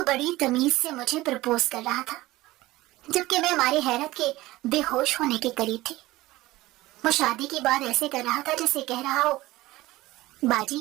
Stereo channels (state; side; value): quieter; left; 18.2 dB